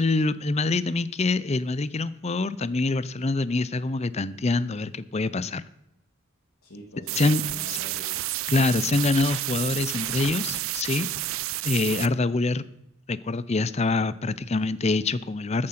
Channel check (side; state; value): both; normal; correlation 0.62